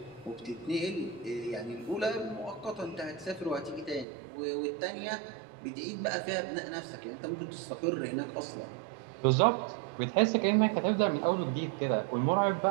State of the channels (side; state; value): left; drops out; at 4.0 s